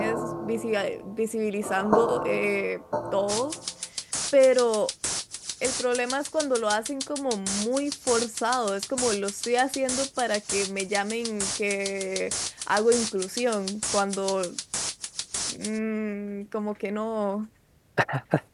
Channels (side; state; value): both; identical; correlation 1.00